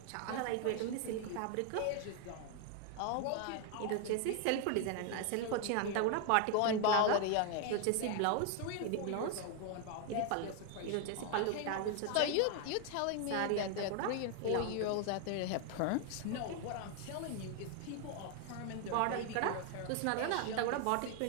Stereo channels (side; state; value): both; different; correlation 0.01